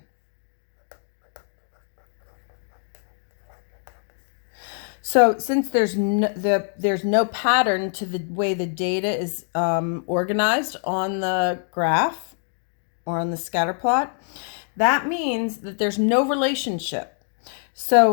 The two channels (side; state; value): right; silent; 62 dB below the other